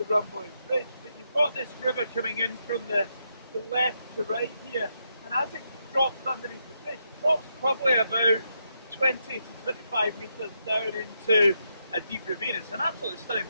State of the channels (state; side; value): inverted; both; correlation -0.81